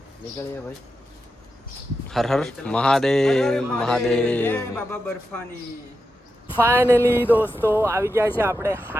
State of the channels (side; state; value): both; normal; correlation 0.89